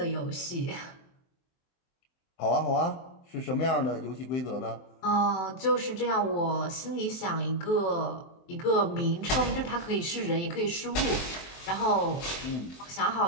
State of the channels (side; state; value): right; late; 23 ms